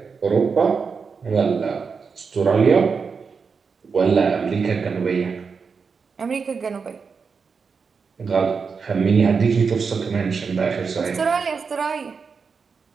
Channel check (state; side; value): quieter; left; 5.4 dB